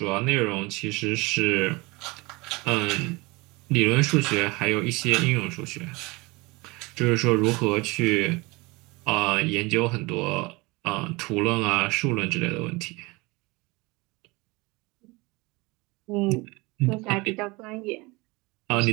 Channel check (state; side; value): quieter; left; 24.5 dB